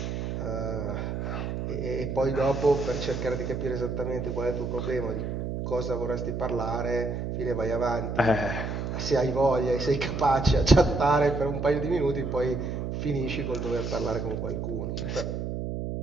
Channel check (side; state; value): right; noise; hum, 3 dB below the sound